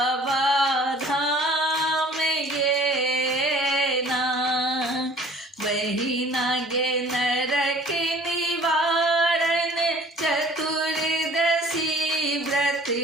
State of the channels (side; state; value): both; normal; correlation 0.51